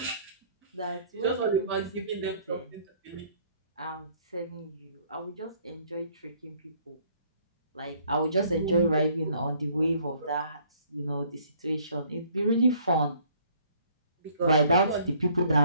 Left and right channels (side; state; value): both; inverted; correlation -0.60